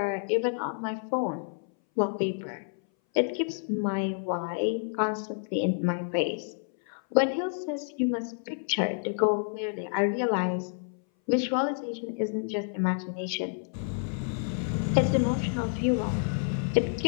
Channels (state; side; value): silent; right; 58 dB below the other